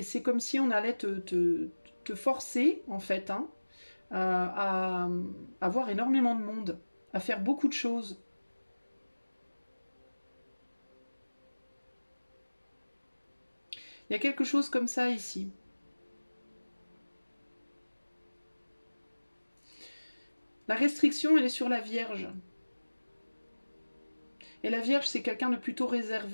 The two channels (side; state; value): both; inverted; correlation -1.00